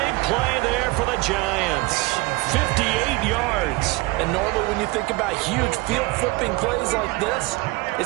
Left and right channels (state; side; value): quieter; left; 22.7 dB